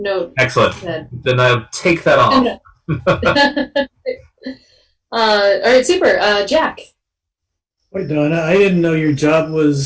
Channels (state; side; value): identical; both; correlation 1.00